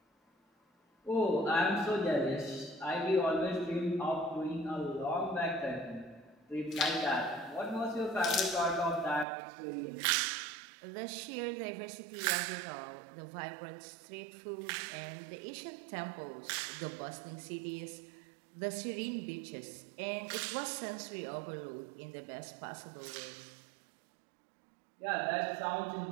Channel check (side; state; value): left; drops out; at 9.2 s